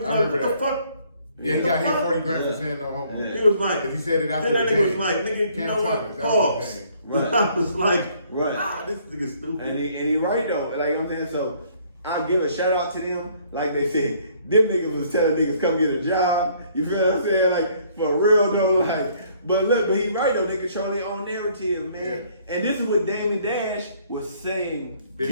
I like, remember what the that. fuck? Yeah, he What got the hit fuck? 40 grand for saying no homo. He was like, Because he said it after then that the nigga was game. like, nigga, you Cam know Thomas, what? that was Pause. the game. Right. I was like, Right. this nigga stupid. And he right though. Like I'm saying, so I'll give a shout out to them. Like they said, them niggas was telling niggas come get a job. You feel what I'm saying? Like for real though. Like, but look, but he right though. They control their own narrative, man. And this is what Damon Dash was saying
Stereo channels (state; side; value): inverted; both; correlation -0.62